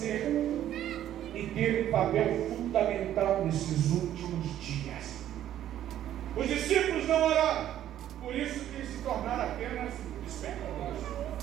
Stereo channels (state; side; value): quieter; left; 11.7 dB